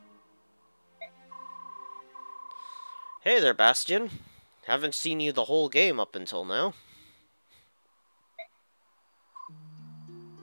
Hey there, Bastion. Haven't seen you the whole game up until now.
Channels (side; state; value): both; inverted; correlation -1.00